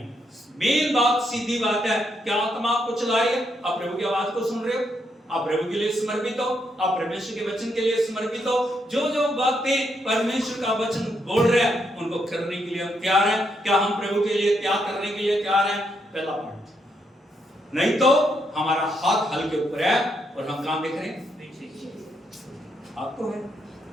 मेन बात, सीधी बात है, क्या आत्मा आपको चला रही है? आप प्रभु की आवाज को सुन रहे हो? आप प्रभु के लिए समर्पित हो? आप परमेश्वर के वचन के लिए समर्पित हो? जो जो बातें परमेश्वर का वचन बोल रहे हैं, उनको करने के लिए हम तैयार हैं? क्या हम प्रभु के लिए त्याग करने के लिए तैयार हैं? पहला पॉइंट। नहीं तो हमारा हाथ हल के ऊपर है और हम काम देख रहे हैं, हाथ तो है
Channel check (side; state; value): both; normal; correlation 0.78